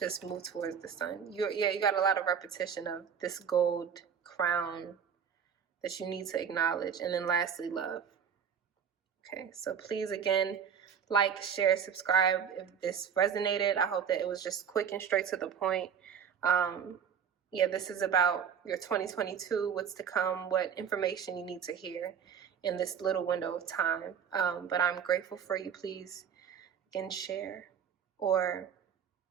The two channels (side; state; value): left; quieter; 7.6 dB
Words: move towards the sun. You got a lot of repetition of this gold crown that you need to acknowledge. And then lastly, love. Okay, so please, again, like, share, subscribe if this resonated. I hope that it was just quick and straight to the point. This is about your 2022, what's to come, what information you need to hear in this little window of time. But I'm grateful for you. Please, again, share or